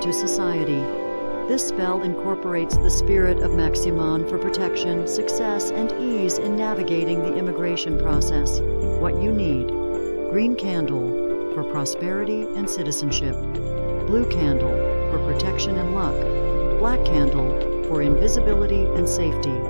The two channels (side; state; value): both; inverted; correlation -1.00